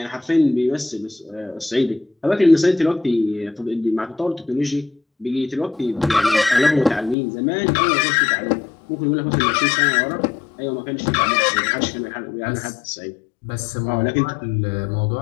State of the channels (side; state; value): right; drops out; at 7.2 s